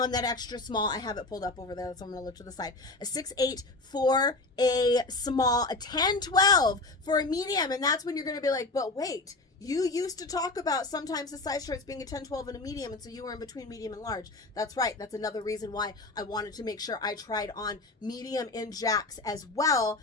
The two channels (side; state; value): right; quieter; 3.1 dB